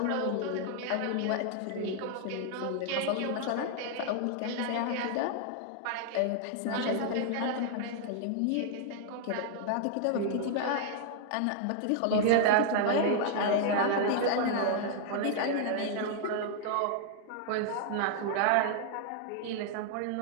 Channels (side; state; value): both; different; correlation 0.00